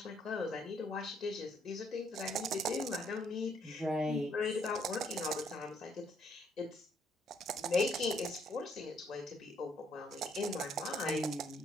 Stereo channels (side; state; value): both; normal; correlation 0.69